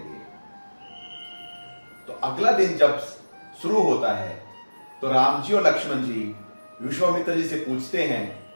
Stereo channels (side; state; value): both; inverted; correlation -1.00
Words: तो अगला दिन जब शुरू होता है तो राम जी और लक्ष्मण जी विश्वामित्र जी से पूछते हैं